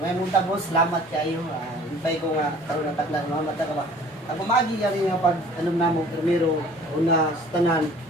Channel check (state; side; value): normal; both; correlation 0.50